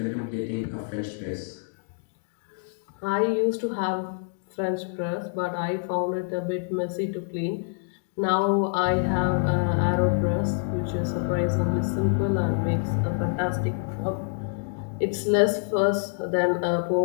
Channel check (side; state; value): right; silent; 61 dB below the other